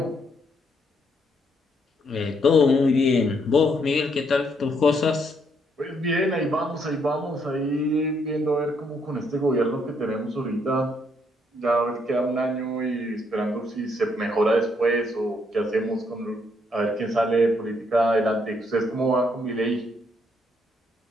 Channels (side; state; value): both; normal; correlation 0.72